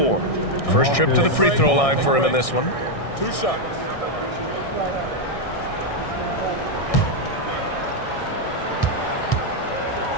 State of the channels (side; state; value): right; late; 1.6 ms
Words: First trip to the free throw line for him in this one. 2 shots.